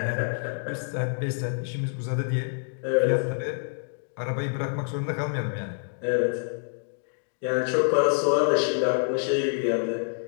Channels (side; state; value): right; silent; digital silence